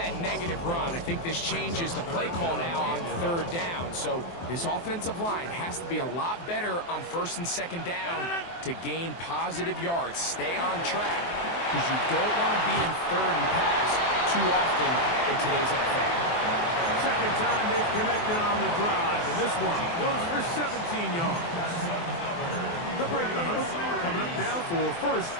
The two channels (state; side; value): late; right; 23 ms